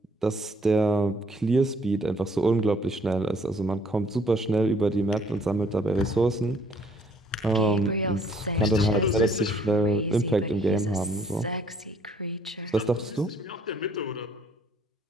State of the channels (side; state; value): both; normal; correlation 0.63